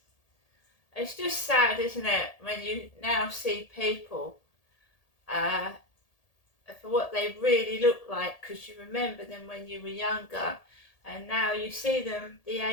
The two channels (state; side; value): late; right; 1.8 ms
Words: it's just sad, isn't it, when you now see people for what they really look like, because you remember them when you were younger, and now you see them the